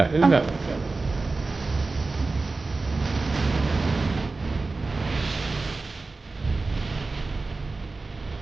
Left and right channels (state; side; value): quieter; left; 3.6 dB